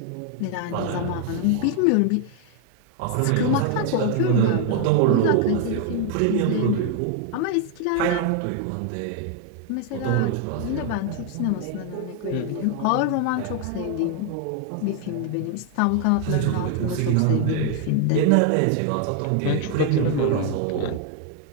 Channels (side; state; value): both; different; correlation 0.00